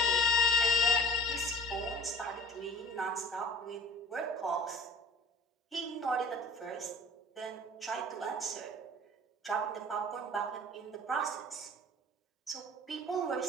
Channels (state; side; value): normal; both; correlation 0.45